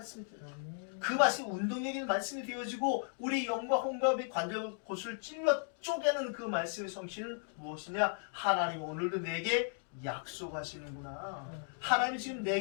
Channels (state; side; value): silent; right; 54 dB below the other